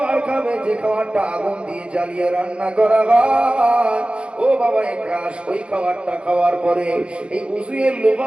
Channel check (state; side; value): late; left; 0.058 ms